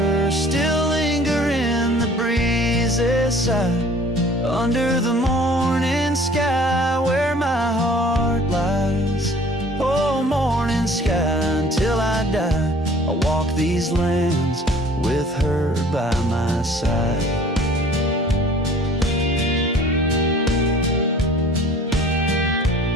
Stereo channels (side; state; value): both; normal; correlation 0.51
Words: still linger in the breeze's side, under the morning sky where my heart lies. Oh, morning sky, until I die, I'll walk these lands with her by my side.